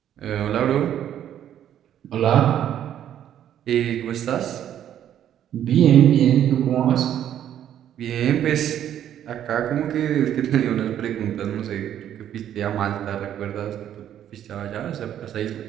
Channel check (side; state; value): left; quieter; 10.6 dB